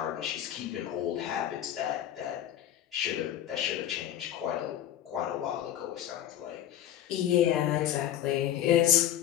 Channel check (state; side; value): quieter; right; 11.3 dB